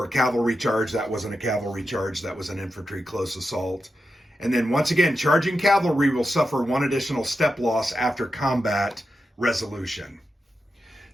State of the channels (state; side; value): normal; both; correlation 0.88